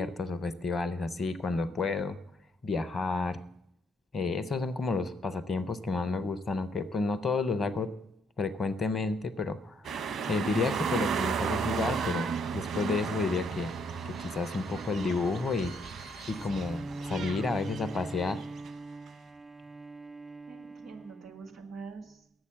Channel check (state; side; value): normal; both; correlation 0.71